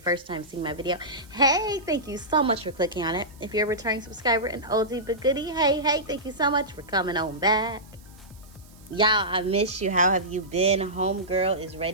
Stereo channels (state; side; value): noise; right; hiss, 26 dB below the sound